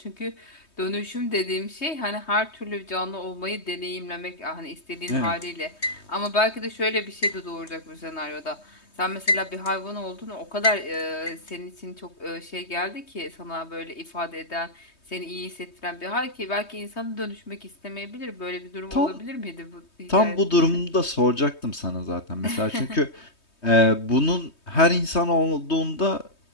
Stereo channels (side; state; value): right; late; 3.2 ms